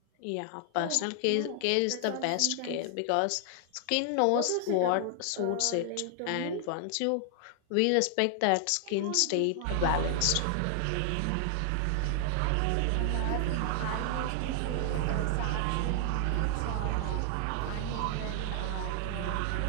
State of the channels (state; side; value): different; both; correlation 0.00